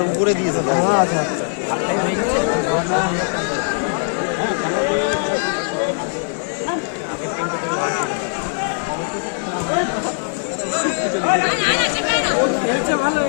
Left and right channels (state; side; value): silent; right; digital silence